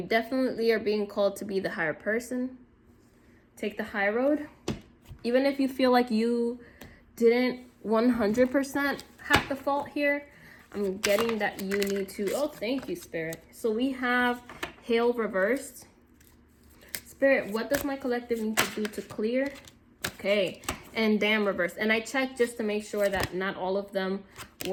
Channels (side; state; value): both; identical; correlation 1.00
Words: definitely are being called to be the higher person. Take the high road. Even if you feel like you didn't 100% have the fault here, I'm getting that you need to, oh, thank you, Spirit. So we have Hail reversed. Spirit, what does my collective need to do to clear? Okay, and Damn reversed. And I checked just to make sure that not all of them